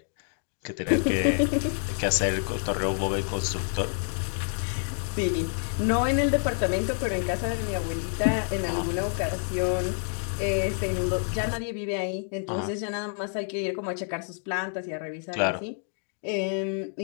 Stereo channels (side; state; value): right; silent; 59 dB below the other